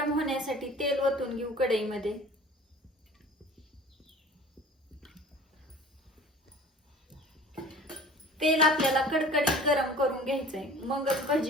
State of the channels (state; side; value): normal; both; correlation 0.43